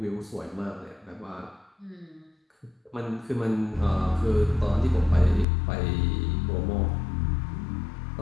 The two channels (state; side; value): drops out; right; at 5.5 s